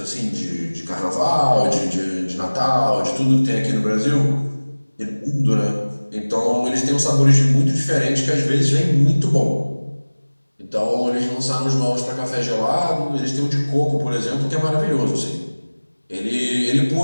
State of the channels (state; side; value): inverted; both; correlation -1.00